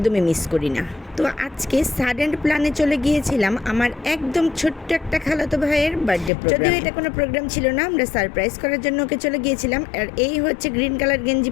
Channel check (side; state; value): right; drops out; at 6.3 s